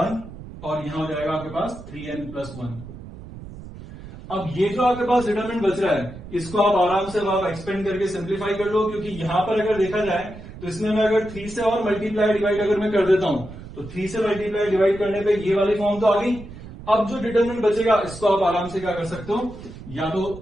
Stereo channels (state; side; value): noise; right; rumble, 14 dB below the sound